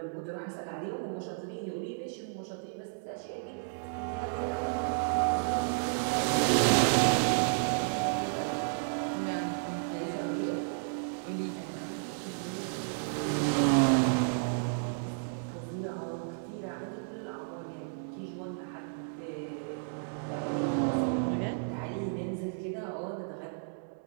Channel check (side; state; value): left; silent; 56 dB below the other